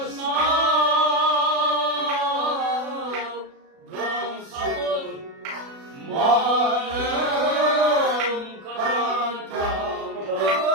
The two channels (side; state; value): left; late; 36 ms